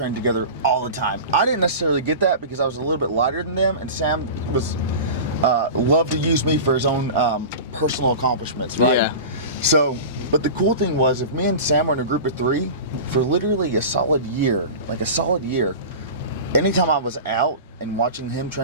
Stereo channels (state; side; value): inverted; both; correlation -0.32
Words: together all the time. I didn't necessarily get that because I was a little bit lighter than them, and Sam was loved to use me for his own personal accomplishments, right? Yeah. So, but the cool thing was, if me and Sam were in a group of 3 for literally a solid year, anytime I was out and watching him